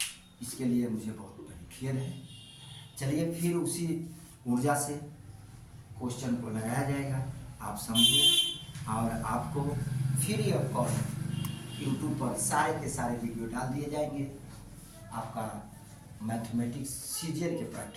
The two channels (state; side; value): identical; both; correlation 1.00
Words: इसके लिए मुझे बहुत बड़ी खेद है। चलिए फिर उसी ऊर्जा से क्वेश्चन को लगाया जाएगा, आप समझिए। और आपको फ्री ऑफ कॉस्ट यूट्यूब पर सारे के सारे वीडियो डाल दिए जाएंगे आपका मैथमेटिक्स सीरियल के